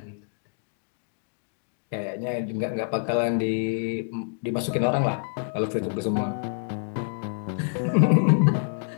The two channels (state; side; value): silent; right; 60 dB below the other